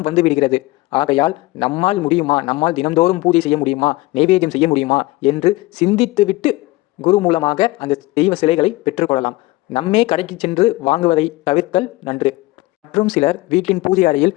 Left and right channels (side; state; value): right; quieter; 20.5 dB